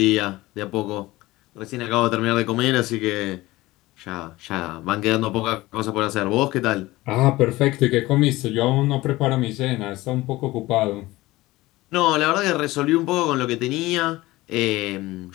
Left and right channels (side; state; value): right; quieter; 18.9 dB